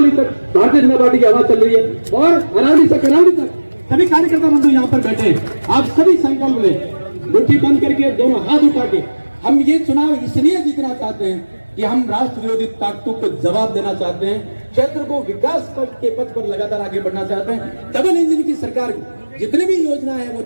तक भारतीय जनता पार्टी की हवा चल रही है। और अरावली से करावली तक सभी कार्यकर्ता बंधु यहाँ पर बैठे, आप सभी संकल्प लें, मुट्ठी बंद करके दोनों हाथ उठा के। हम ये चुनाव इसलिए जीतना चाहते हैं कि हम राष्ट्र विरोधी ताकतों को जवाब देना चाहते हैं, क्षेत्र को विकास के पथ पर लगातार आगे बढ़ना चाहते हैं। डबल इंजन की सरकार जितने भी योजना है वो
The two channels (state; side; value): inverted; both; correlation -1.00